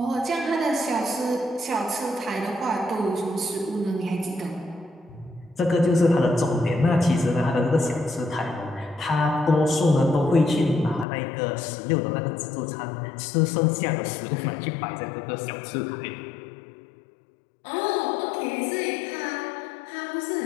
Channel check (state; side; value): drops out; right; at 11.1 s